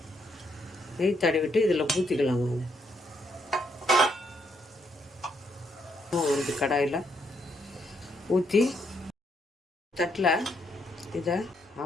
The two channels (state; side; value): normal; both; correlation 0.75